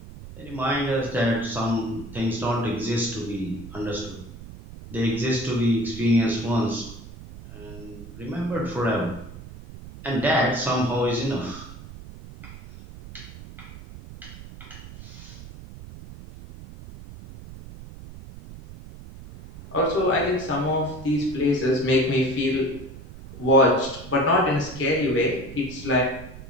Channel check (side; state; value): right; noise; rumble, 15 dB below the sound